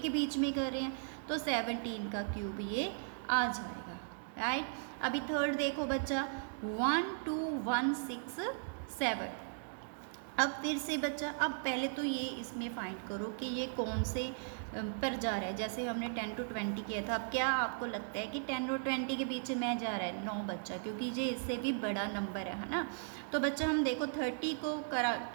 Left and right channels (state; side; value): silent; left; digital silence